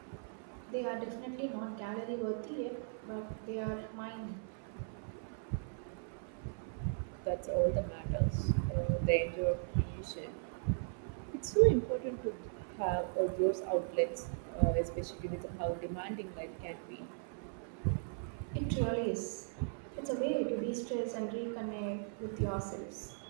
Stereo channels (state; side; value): silent; left; 52 dB below the other